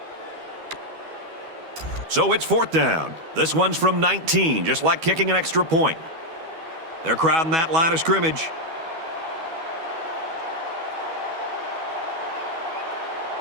So it's fourth down. This one's from 19, just like kicking an extra point. They're crowding that line of scrimmage.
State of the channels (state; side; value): late; left; 12 ms